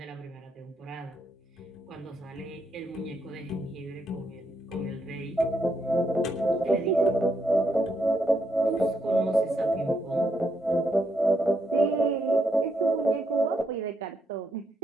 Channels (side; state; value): both; normal; correlation 0.78